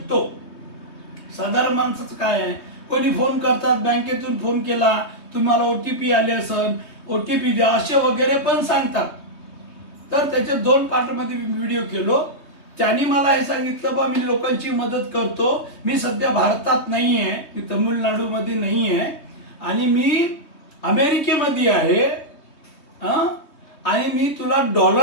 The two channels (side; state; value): right; late; 3.2 ms